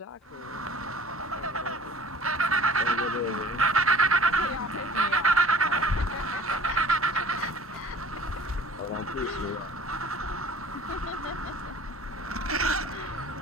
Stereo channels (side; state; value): both; normal; correlation 0.47